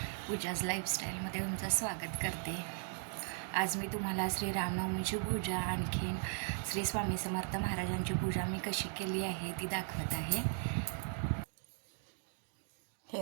पूजाज लाईफस्टाईलमध्ये तुमचं स्वागत करते. आज मी तुम्हाला श्री रामनवमीची पूजा आणखीन श्री स्वामी समर्थ महाराजांची पूजा मी कशी केली आहे ती दाखवत आहे. हे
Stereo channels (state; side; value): silent; left; 53 dB below the other